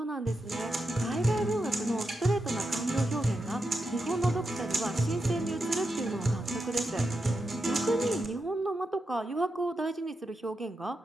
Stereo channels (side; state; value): both; normal; correlation 0.87